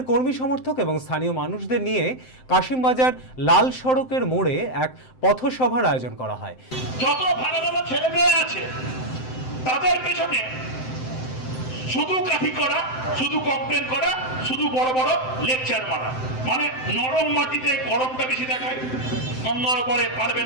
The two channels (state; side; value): late; right; 7.8 ms